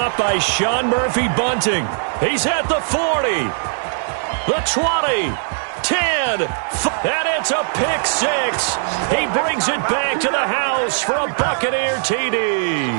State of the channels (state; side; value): silent; left; 66 dB below the other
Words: by Sean Murphy Bunting. He's at the 40. The 20. 10. And it's a pick 6. He brings it back to the house for a Buccaneer